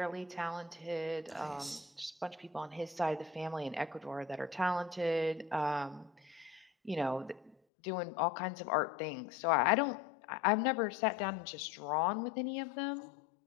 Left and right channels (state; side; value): drops out; right; at 7.6 s